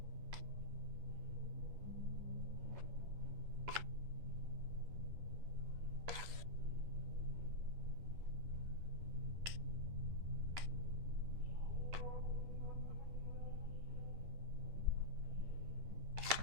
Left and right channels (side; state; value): left; late; 11 ms